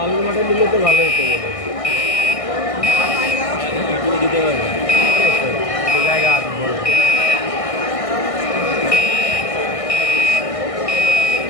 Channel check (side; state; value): right; late; 1.6 ms